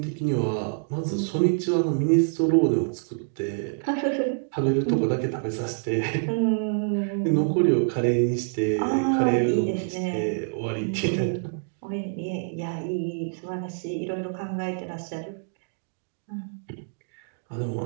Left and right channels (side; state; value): left; silent; digital silence